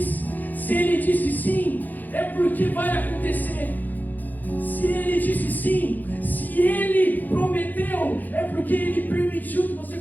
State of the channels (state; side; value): late; right; 0.084 ms